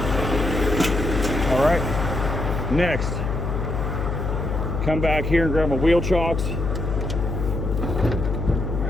All right, next, come back here and grab my wheel chocks.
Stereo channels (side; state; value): left; noise; hum, 2 dB below the sound